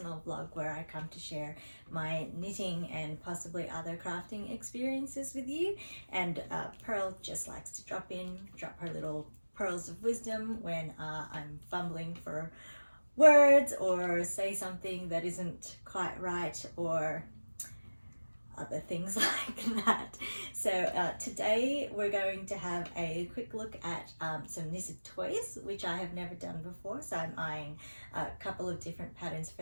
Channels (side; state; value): both; inverted; correlation -1.00